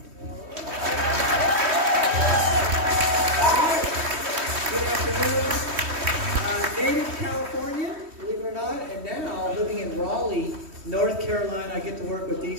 Good afternoon. Native California, believe it or not, and now living in Raleigh, North Carolina. I get to work with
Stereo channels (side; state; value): left; late; 3.1 ms